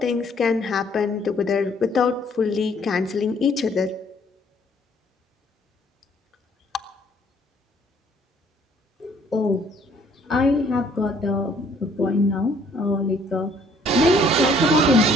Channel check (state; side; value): normal; both; correlation 0.62